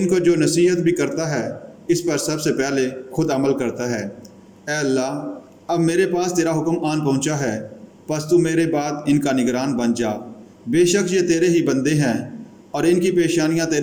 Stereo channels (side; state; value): both; identical; correlation 1.00